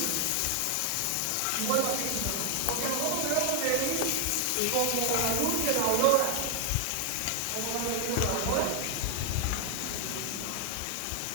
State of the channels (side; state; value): both; different; correlation 0.00